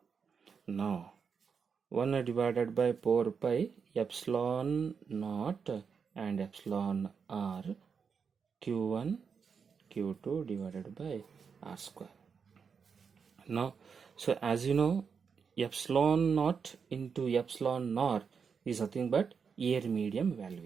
Now 1 divided by 4 pi epsilon naught and epsilon r, Q1 Q2 divided by R square. Now, so as you know, epsilon naught into epsilon naught is nothing but air medium value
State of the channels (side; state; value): left; quieter; 6.1 dB